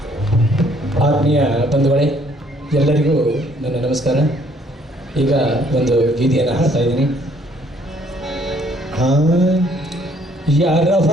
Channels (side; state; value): both; normal; correlation 0.64